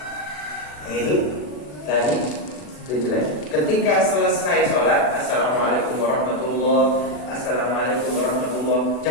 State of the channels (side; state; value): right; late; 40 ms